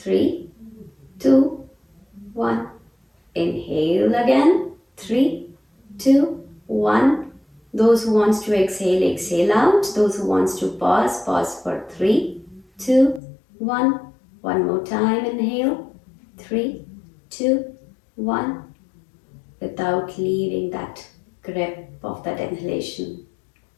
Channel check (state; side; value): drops out; right; at 13.2 s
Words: 3, 2, 1. Inhale again. 3, 2, 1. Those who wants to exhale, exhale out. Those who wants to pause, pause for 3, 2, 1. One more time, inhale. 3, 2, 1. Without leaving that grip of that inhalation.